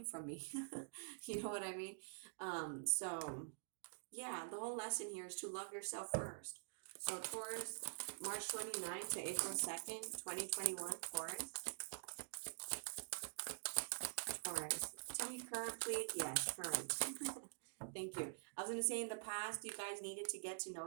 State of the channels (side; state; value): left; silent; digital silence